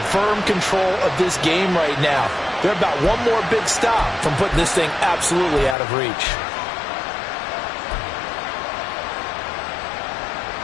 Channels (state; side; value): drops out; right; at 5.8 s